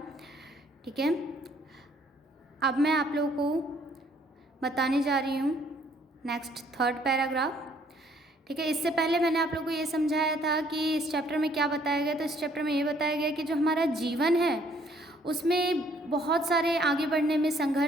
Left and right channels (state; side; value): normal; both; correlation 0.63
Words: ठीक है, अब मैं आप लोगों को बताने जा रही हूँ नेक्स्ट 3rd पैराग्राफ। ठीक है, इससे पहले मैंने आप लोगों को ये समझाया था कि इस चैप्टर में क्या बताया गया। तो इस चैप्टर में ये बताया गया कि जो हमारा जीवन है उसमें बहुत सारे आगे बढ़ने में